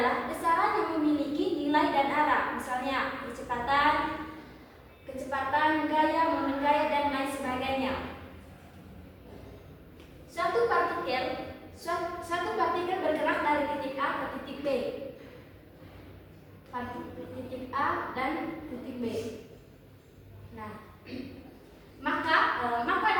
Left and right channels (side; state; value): both; identical; correlation 1.00